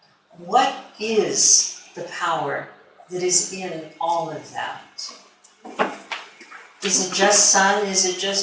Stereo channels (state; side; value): identical; both; correlation 1.00